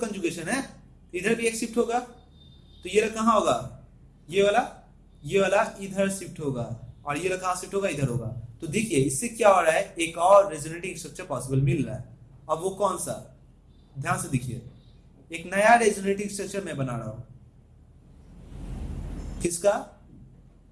है, इधर भी एक शिफ्ट होगा, तो ये कहां होगा, ये वाला इधर शिफ्ट होगा, और ये कहां शिफ्ट होगा, इधर होगा। तो देखिए इससे क्या हो रहा है, एक और रेजोनेटिंग स्ट्रक्चर पॉसिबल मिल रहा है। अब वो कौन सा, ध्यान से देखिए, एक नया रेजोनेटिंग स्ट्रक्चर मैं बना रहा हूं, किसका,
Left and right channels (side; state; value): both; identical; correlation 1.00